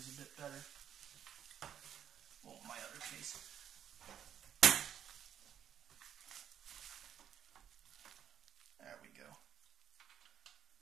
a bit better. Well, my other case. There we go.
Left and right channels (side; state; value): left; quieter; 9.6 dB